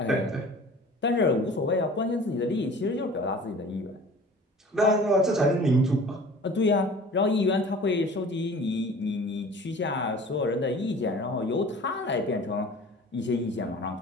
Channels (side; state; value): both; normal; correlation 0.44